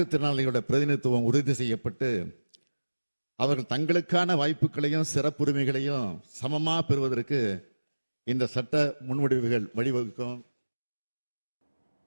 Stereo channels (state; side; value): inverted; both; correlation -1.00